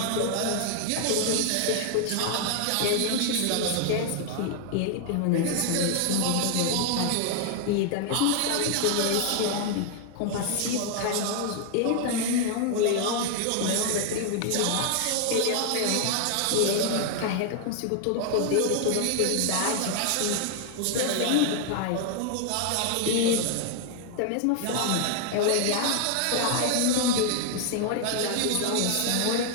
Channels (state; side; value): different; both; correlation 0.00